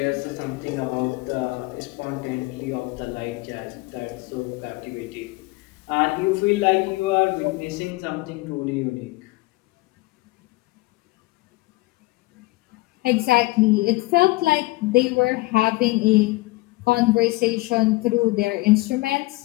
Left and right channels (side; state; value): right; quieter; 21.7 dB